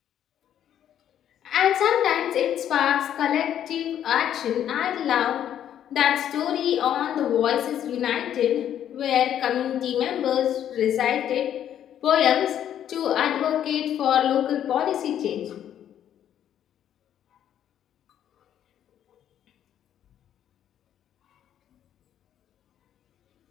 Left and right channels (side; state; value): right; quieter; 10.3 dB